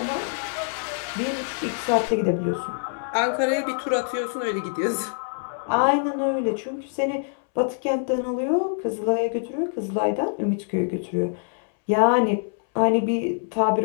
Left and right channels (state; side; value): silent; right; 62 dB below the other